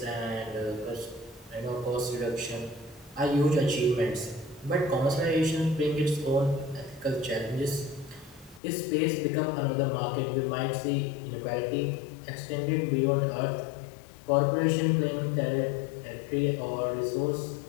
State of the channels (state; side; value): drops out; right; at 8.6 s